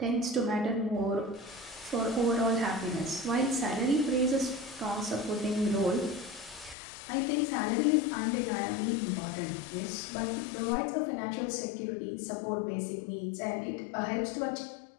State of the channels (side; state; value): right; drops out; at 6.8 s